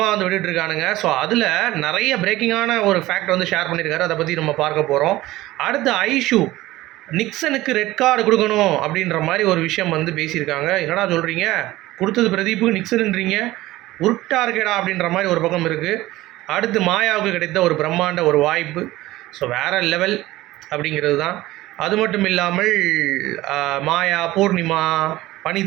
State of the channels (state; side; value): quieter; left; 17.3 dB